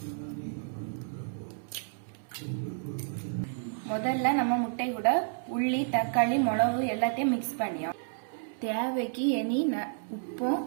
முதல்ல நம்ம முட்டை கூட உள்ளி, தக்காளி, மிளகு எல்லாத்தையும் மிக்ஸ் பண்ணியோம். தேவைக்கு இனி உப்பும்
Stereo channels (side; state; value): left; silent; 57 dB below the other